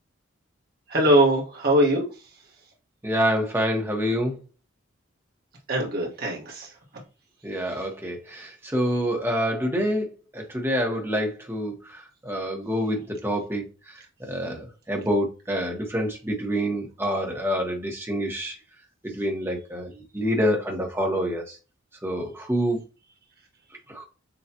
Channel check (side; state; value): both; normal; correlation 0.50